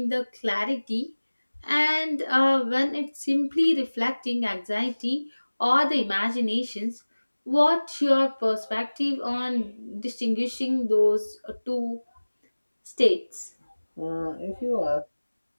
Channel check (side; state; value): both; inverted; correlation -1.00